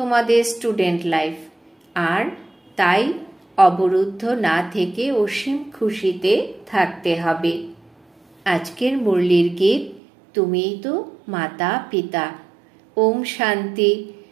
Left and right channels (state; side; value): drops out; left; at 10.0 s